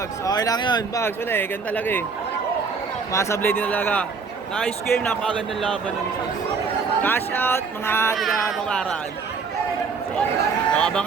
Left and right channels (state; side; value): quieter; left; 5.0 dB